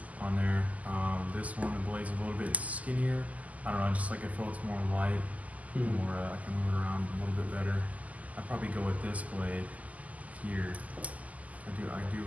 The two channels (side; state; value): left; late; 0.074 ms